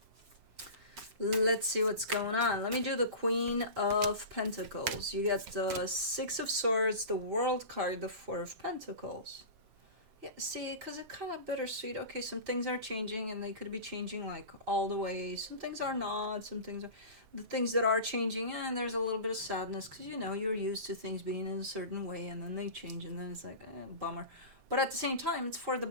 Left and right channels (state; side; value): late; left; 7.6 ms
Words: Let's see what's going on. Let me do the Queen of Pentacles. You get the Six of Swords, the World card, the Four of Pentacles. Yeah, see, because it's kind of bittersweet. Okay, some things are changing, and they could be changing, like, all the way. Some things are not. Some things are... The things that are changing, and there's a little bit of sadness, because, you're used to things being in a certain way, and then they change, and then it's like, bummer. But at the same time, it's for the